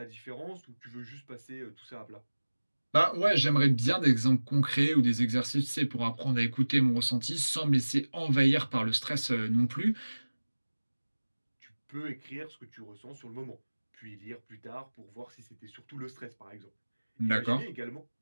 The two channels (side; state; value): both; inverted; correlation -1.00